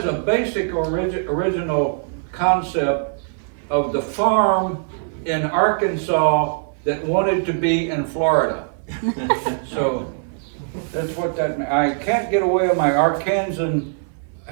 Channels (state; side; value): silent; left; 58 dB below the other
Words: a basic original concept of the farm in Arkansas that wanted to be in Florida. So that's what that means. I can't get away with my Arkansan